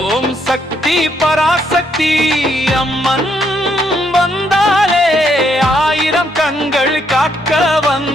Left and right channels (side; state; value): both; normal; correlation 0.73